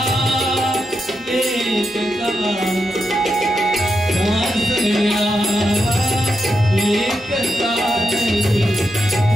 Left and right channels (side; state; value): both; normal; correlation 0.86